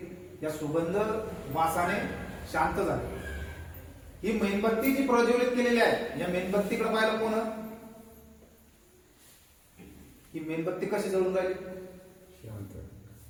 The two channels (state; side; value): identical; both; correlation 1.00